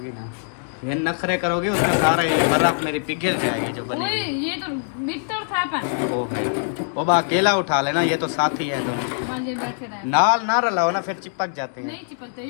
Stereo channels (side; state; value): right; silent; digital silence